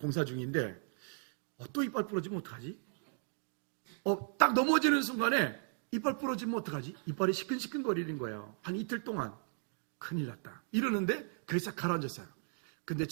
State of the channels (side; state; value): left; silent; 54 dB below the other